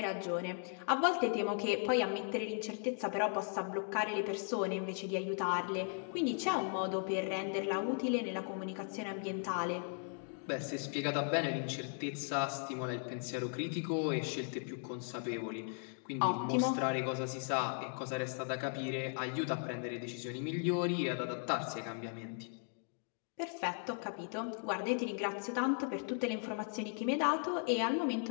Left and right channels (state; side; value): silent; right; 53 dB below the other